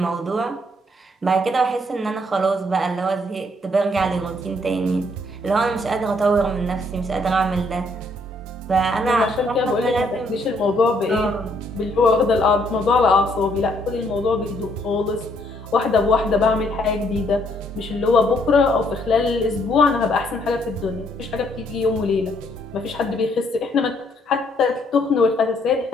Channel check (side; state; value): both; normal; correlation 0.69